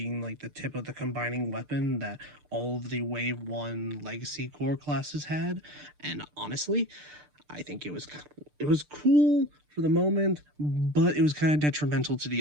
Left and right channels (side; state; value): left; late; 6.7 ms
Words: like the tip of the combining weapon that all of the Wave 1 Legacy core classes had. And honestly, I think it was cool for the moment, but it was kind of detrimental to